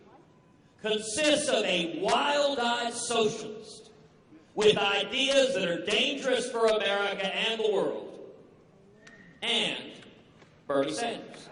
consists of a wild-eyed socialist with ideas that are dangerous for America and the world, and Bernie Sanders.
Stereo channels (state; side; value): identical; both; correlation 1.00